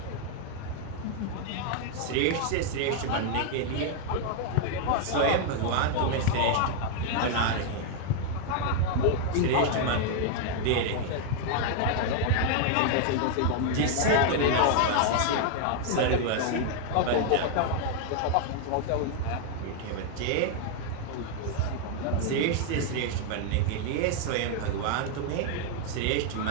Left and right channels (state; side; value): different; both; correlation 0.00